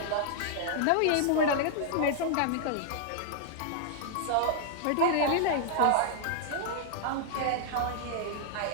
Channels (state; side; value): different; both; correlation -0.01